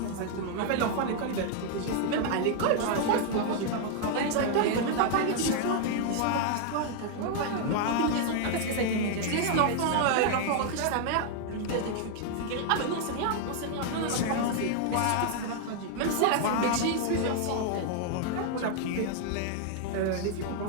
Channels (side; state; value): both; different; correlation 0.00